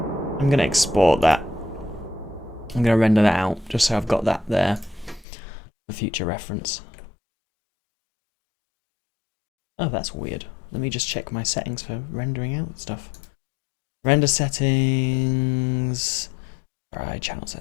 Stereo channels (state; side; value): drops out; right; at 5.2 s